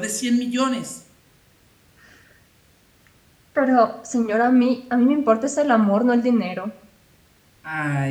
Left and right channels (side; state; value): both; identical; correlation 1.00